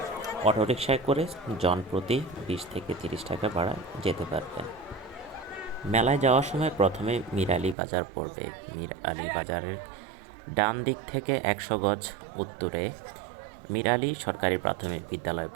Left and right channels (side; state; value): left; drops out; at 7.8 s